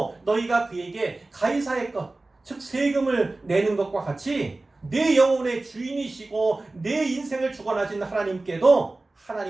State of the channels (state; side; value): quieter; left; 3.1 dB